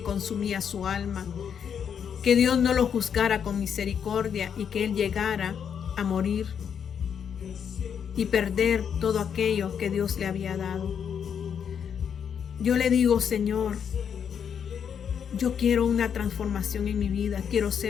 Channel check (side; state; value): right; quieter; 7.7 dB